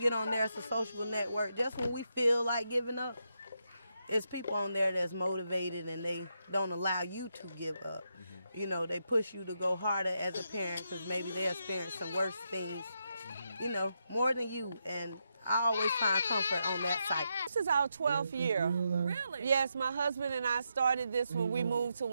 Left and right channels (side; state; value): both; inverted; correlation -0.83